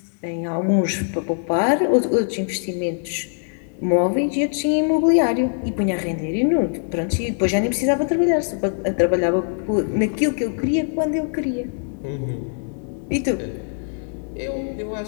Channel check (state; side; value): silent; right; digital silence